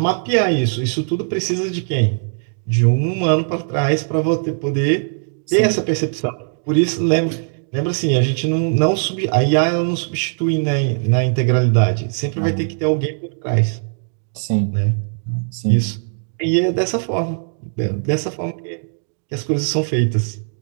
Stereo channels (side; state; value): left; silent; digital silence